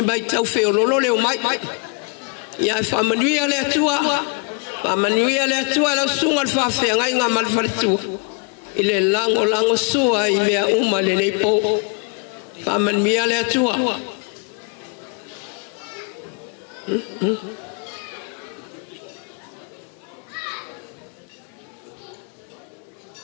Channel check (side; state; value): right; quieter; 37.4 dB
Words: mai tau feo lolo le o mai ia fa manuia le tua la sunga al fa fe ngai nga mal falitu ile lango sua i mea uma le nei po fa manuia le tua